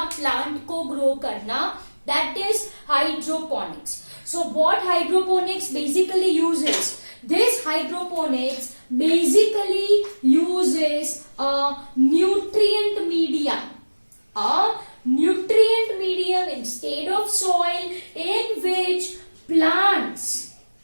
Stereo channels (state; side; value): inverted; both; correlation -1.00